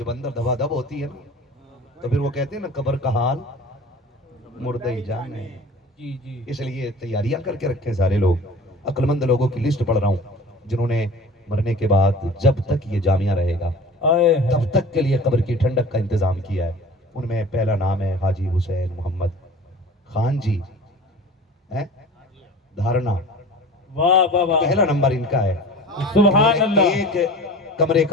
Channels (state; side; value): normal; both; correlation 0.40